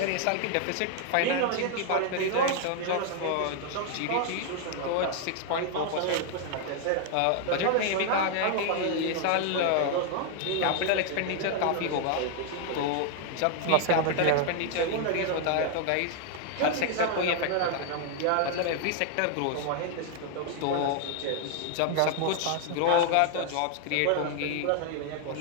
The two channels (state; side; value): different; both; correlation 0.00